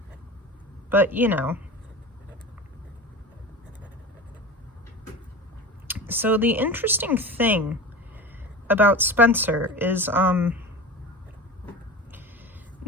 But, you know. So the interesting thing about Spencer is,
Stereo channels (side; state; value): both; normal; correlation 0.31